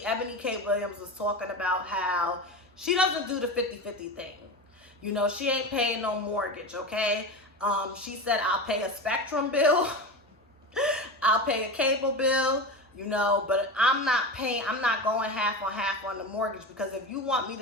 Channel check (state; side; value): normal; both; correlation 0.25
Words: Eboni K Williams was talking about how she doesn't do the 50-50 thing. You know, she ain't paying no mortgage, okay? She said, I'll pay a Spectrum bill, I'll pay a cable bill, you know, but I'm not going half on the mortgage, because if you want me